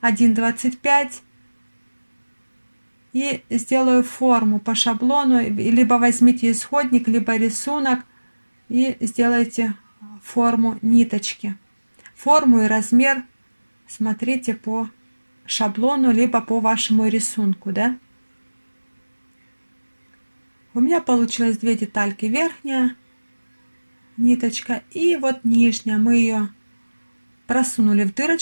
1,25 и сделаю форму по шаблону. Либо возьмите исходник, либо рисунок и сделайте форму ниточки. Форму и размер смотрите по шаблону, либо по вашему рисунку, да? У меня получилось 2 детальки: верхняя ниточка и вот нижняя. Мы ее просунули в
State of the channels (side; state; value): both; inverted; correlation -1.00